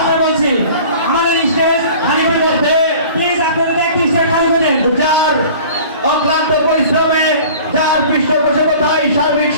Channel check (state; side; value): inverted; both; correlation -0.45